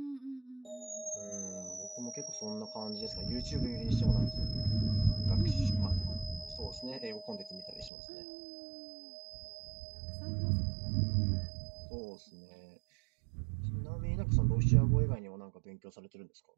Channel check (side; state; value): left; drops out; at 7.9 s